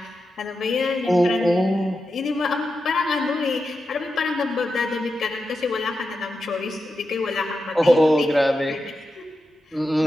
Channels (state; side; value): normal; both; correlation 0.89